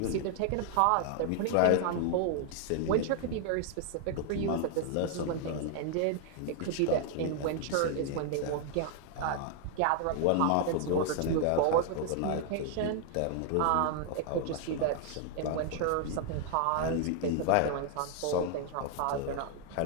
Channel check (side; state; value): both; different; correlation 0.00